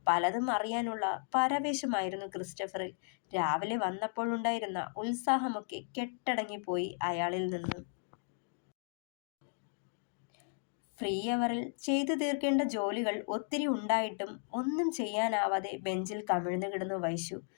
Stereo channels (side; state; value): right; silent; 54 dB below the other